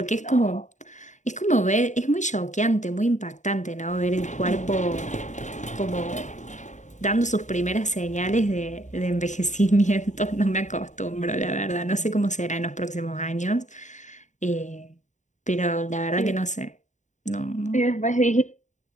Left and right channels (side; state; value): right; late; 0.35 ms